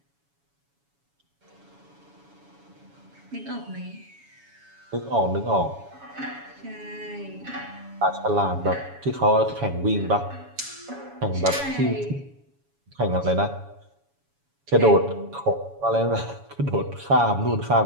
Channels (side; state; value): left; late; 7.1 ms